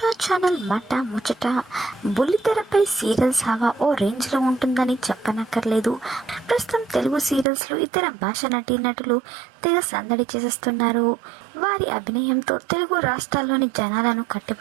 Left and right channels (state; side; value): drops out; left; at 7.5 s